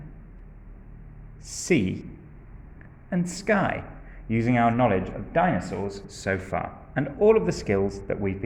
sea, and sky, using our knowledge of dinosaurs so far, and all of the skills that we've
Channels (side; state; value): both; identical; correlation 1.00